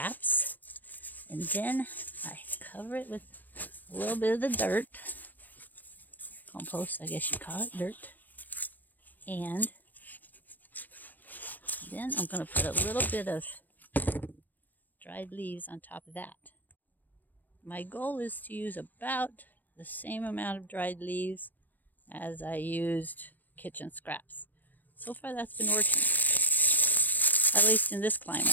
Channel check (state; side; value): late; right; 0.085 ms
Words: and then I cover it with a little bit of the dirt, compost I guess you call it, dirt, and then I'm going to put a little bit of dried leaves on top of that. My goal is to use about the same amount of dried leaves as I used kitchen scraps. So far that's been working, at least in this climate.